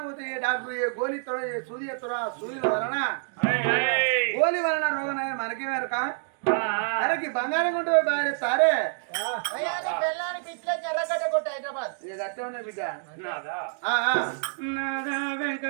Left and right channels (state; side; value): silent; left; digital silence